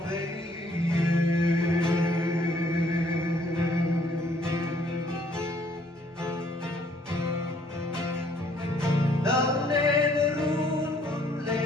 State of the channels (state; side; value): normal; both; correlation 0.63